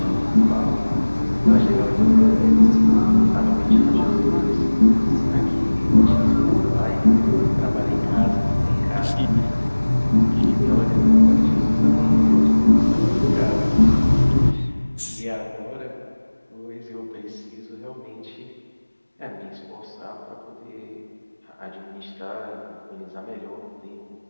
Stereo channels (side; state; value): both; inverted; correlation -1.00